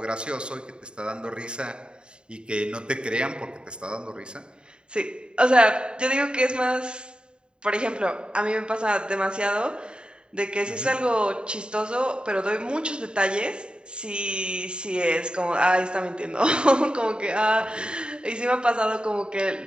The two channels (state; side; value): late; left; 0.051 ms